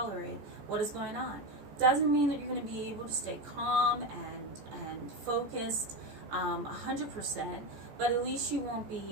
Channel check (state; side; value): late; left; 14 ms